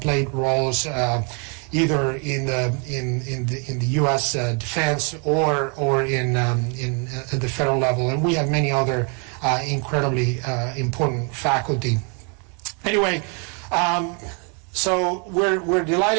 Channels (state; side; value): quieter; left; 37.1 dB